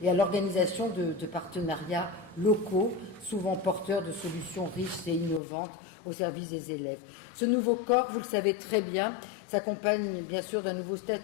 et à l'organisation de partenariats locaux, souvent porteurs de solutions riches et innovantes au service des élèves. Ce nouveau corps, vous le savez très bien, s'accompagne bien sûr d'un nouveau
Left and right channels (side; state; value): right; drops out; at 5.4 s